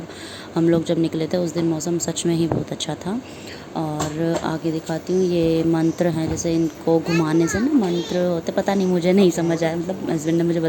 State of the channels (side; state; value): both; identical; correlation 1.00